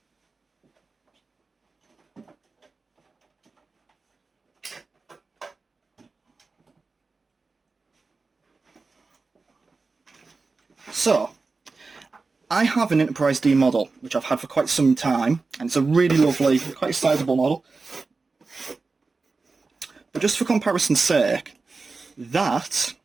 So, I have an Enterprise D model, which I've had for quite some time, and it's a really lovely, quite sizable model. But just for comparison's sake, that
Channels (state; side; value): quieter; left; 4.0 dB